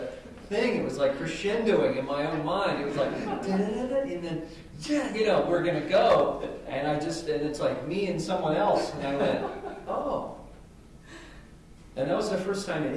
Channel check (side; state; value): both; identical; correlation 1.00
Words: thing. It was like crescendoing in my own mind. It was like, and then, you know, we're going to go. And and it's like me and someone else. And I went, oh. And that was the first time